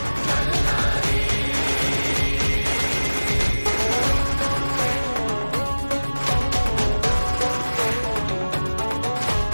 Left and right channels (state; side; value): inverted; both; correlation -1.00